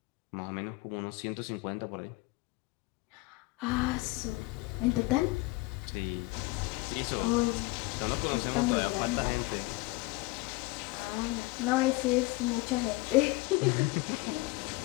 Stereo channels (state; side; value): quieter; right; 22.6 dB